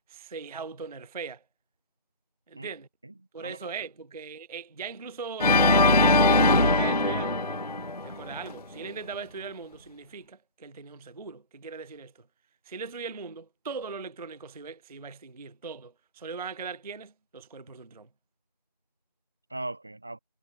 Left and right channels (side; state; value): both; inverted; correlation -0.32